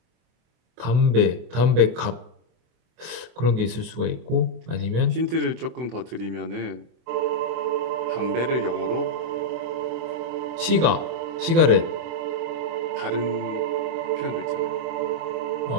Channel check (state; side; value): late; left; 24 ms